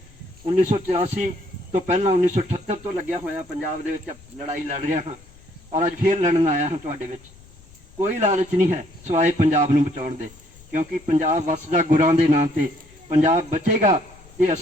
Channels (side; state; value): left; noise; rumble, 24 dB below the sound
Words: 1984 ਤੋਂ ਪਹਿਲਾਂ 1978 ਤੋਂ ਲੱਗਿਆ ਹੋਇਆ ਪੰਜਾਬ ਦੇ ਵਿੱਚ ਲੜਾਈ ਲੜ ਰਿਹਾ ਹਾਂ, ਔਰ ਅੱਜ ਫੇਰ ਲੜਨ ਆਇਆ ਹਾਂ ਤੁਹਾਡੇ ਵਿੱਚ। ਕੋਈ ਲਾਲਚ ਨਹੀਂ ਹੈ ਸਿਵਾਏ ਪੰਜਾਬ ਨੂੰ ਬਚਾਉਣ ਦੇ, ਕਿਉਂਕਿ ਪੰਜਾਬ ਵਸਦਾ ਗੁਰਾਂ ਦੇ ਨਾਂ ਤੇ। ਪੰਜਾਬ ਬਚੇਗਾ ਤੇ